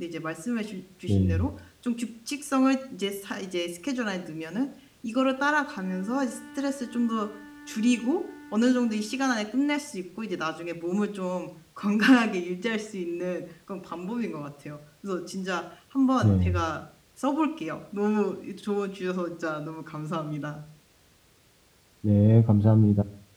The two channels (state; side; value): identical; both; correlation 1.00